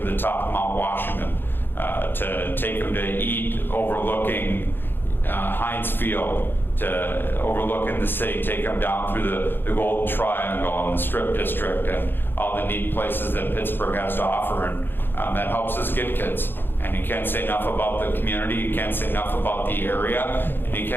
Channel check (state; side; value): late; right; 0.099 ms